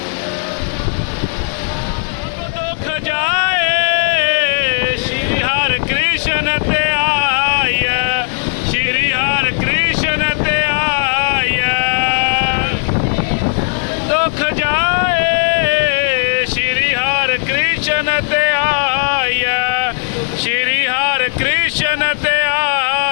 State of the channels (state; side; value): silent; right; 58 dB below the other